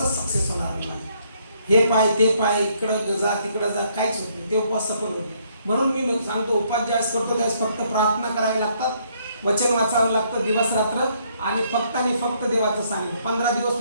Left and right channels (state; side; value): inverted; both; correlation -0.69